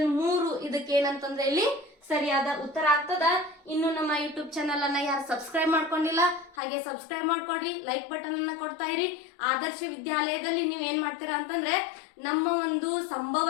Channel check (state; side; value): drops out; right; at 6.6 s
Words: 3 ಇದಕ್ಕೆ ಏನಂತಂದ್ರೆ ಇಲ್ಲಿ ಸರಿಯಾದ ಉತ್ತರ ಆಗ್ತದ. ಇನ್ನು ನಮ್ಮ ಯೂಟ್ಯೂಬ್ ಚಾನಲ್ ಅನ್ನ ಯಾರು ಸಬ್ಸ್ಕ್ರೈಬ್ ಮಾಡ್ಕೊಂಡಿಲ್ಲ ಹಾಗೆ ಸಬ್ಸ್ಕ್ರೈಬ್ ಮಾಡ್ಕೊಡ್ರಿ, ಲೈಕ್ ಬಟನ್ ಅನ್ನ ಕೊಡ್ತಾ ಇರಿ. ಆದರ್ಶ ವಿದ್ಯಾಲಯದಲ್ಲಿ ನೀವ್ ಏನ್ ಮಾಡ್ತೀರಾ ಅಂತಂದ್ರೆ ನಮ್ಮ ಒಂದು